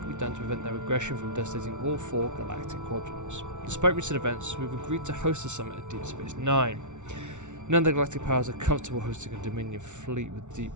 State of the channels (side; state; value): left; late; 0.84 ms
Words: be done to prevent their aggression from devastating all 4 galactic quadrants. Despite recent events, we've agreed to host the summit at Deep Space Nine. None of the galactic powers are comfortable hosting a Dominion fleet deep